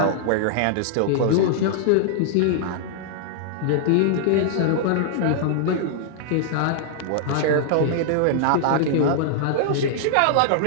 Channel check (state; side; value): different; both; correlation -0.01